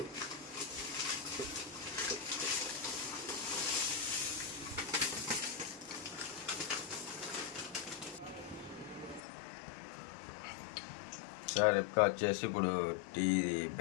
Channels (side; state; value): right; drops out; at 9.2 s